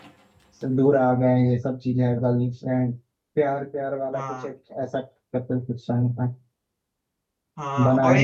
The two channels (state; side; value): identical; both; correlation 1.00